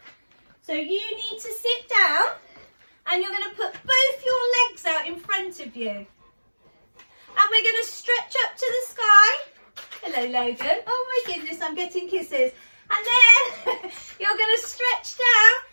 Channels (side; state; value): both; inverted; correlation -1.00